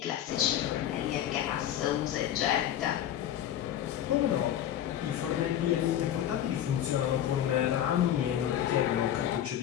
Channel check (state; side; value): quieter; right; 11.0 dB